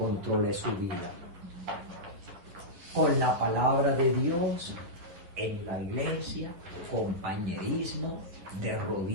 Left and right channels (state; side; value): late; left; 10 ms